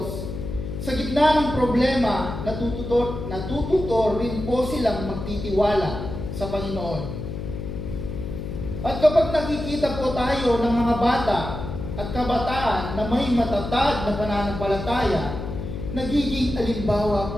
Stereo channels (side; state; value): left; noise; hum, 6 dB below the sound